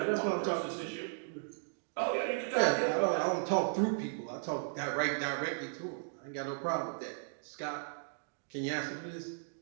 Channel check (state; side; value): silent; left; digital silence